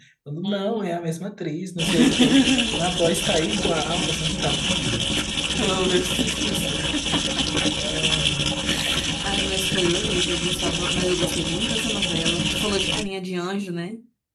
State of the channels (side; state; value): both; identical; correlation 1.00